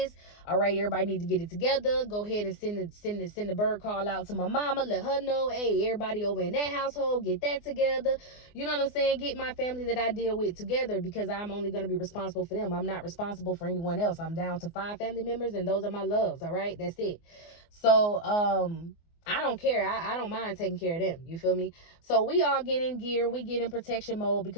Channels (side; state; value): right; late; 24 ms